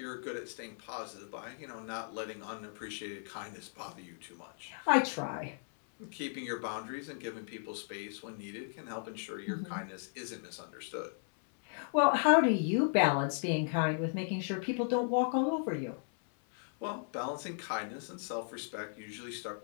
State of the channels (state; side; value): silent; right; 54 dB below the other